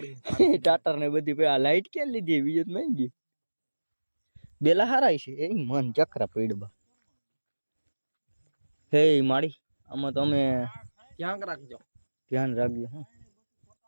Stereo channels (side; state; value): both; inverted; correlation -1.00